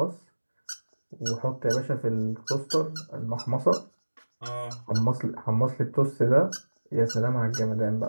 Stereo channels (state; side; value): inverted; both; correlation -1.00